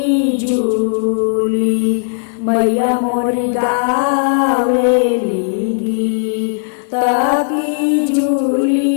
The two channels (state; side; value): silent; right; digital silence